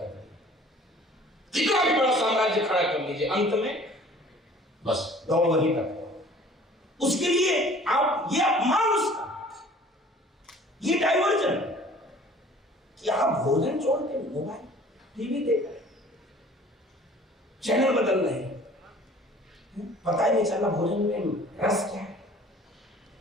कितना भी बड़ा साम्राज्य खड़ा कर लीजिए, अंत में बस दौड़ वहीं तक। उसके लिए आप ये अपमान उसका, ये डाइवर्जन कि आप भोजन छोड़ के मोबाइल टीवी देख रहे, चैनल बदल रहे हैं, पता ही नहीं चला भोजन में रस क्या है,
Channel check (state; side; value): normal; both; correlation 0.50